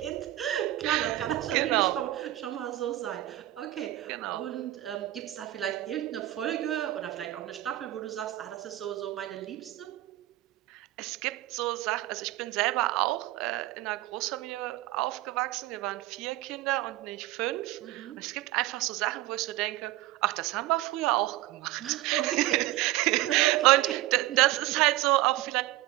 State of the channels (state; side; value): quieter; left; 16.0 dB